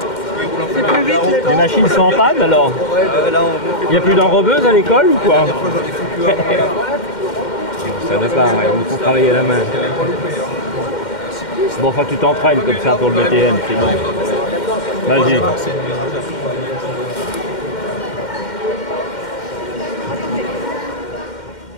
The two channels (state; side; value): late; right; 2.1 ms